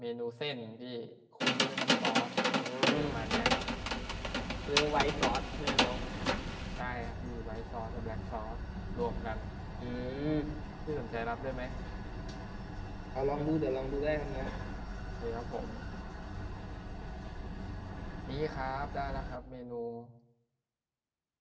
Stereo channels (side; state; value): both; identical; correlation 1.00